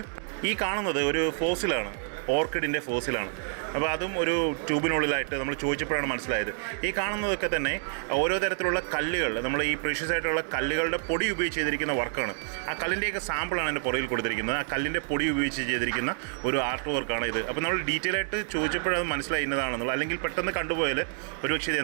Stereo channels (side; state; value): left; silent; 56 dB below the other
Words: ഈ കാണുന്നത് ഒരു ഫോസിലാണ്, ഓർക്കിഡിൻ്റെ ഫോസിലാണ്. അപ്പോൾ അതും ഒരു ട്യൂബിനുള്ളിലായിട്ട് നമ്മൾ ചോദിച്ചപ്പോഴാണ് മനസ്സിലായത്. ഈ കാണുന്നതൊക്കെ തന്നെ ഓരോ തരത്തിലുള്ള കല്ലുകൾ, നമ്മൾ ഈ പ്രീഷ്യസ് ആയിട്ടുള്ള കല്ലുകളുടെ പൊടി ഉപയോഗിച്ച് ചെയ്തിരിക്കുന്ന വർക്കാണ്. ആ കല്ലിൻ്റെയൊക്കെ സാമ്പിളാണ് എൻ്റെ പുറകിൽ കൊടുത്തിരിക്കുന്നത്. ആ കല്ലിൻ്റെ പൊടി ഉപയോഗിച്ച് ചെയ്തിരിക്കുന്ന ഒരു ആർട്ട് വർക്കാണ് ഇത്. അപ്പോൾ നമ്മൾ ഡീറ്റെയിൽ ആയിട്ട് ചോദിച്ചപ്പോഴത് മനസ്സിലായി ഇന്നതാണെന്നുള്ളത്. അല്ലെങ്കിൽ പെട്ടെന്ന് കണ്ടുപോയാൽ ഒരുപക്ഷെ ഇത്